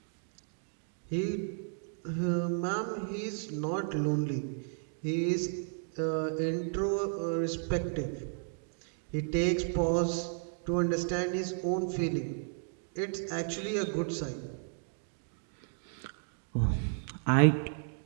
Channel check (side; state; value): left; silent; digital silence